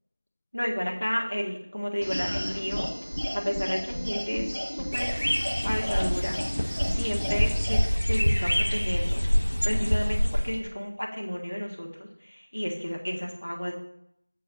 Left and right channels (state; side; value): inverted; both; correlation -1.00